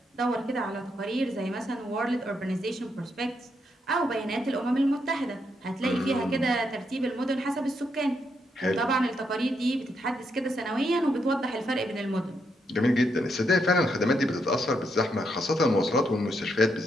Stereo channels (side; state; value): both; normal; correlation 0.79